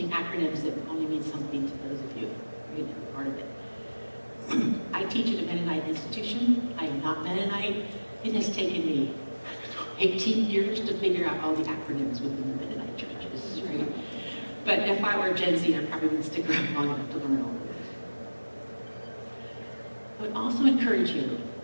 acronyms that only mean something to those of you who are part of it. I teach at a Mennonite institution. I am not Mennonite. It has taken me 18 years to figure out all the acronyms within the Mennonite churches, right? But if I were Gen Z, I probably wouldn't stick around long enough to learn all of this. I would also encourage you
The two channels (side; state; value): both; inverted; correlation -1.00